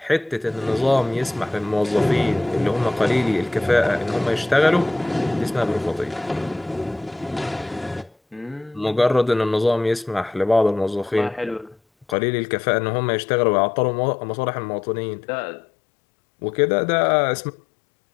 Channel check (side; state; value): right; drops out; at 12.2 s